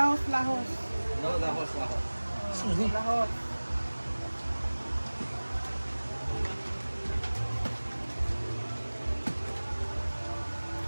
No, lahos. Lahos.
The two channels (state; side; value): inverted; both; correlation -1.00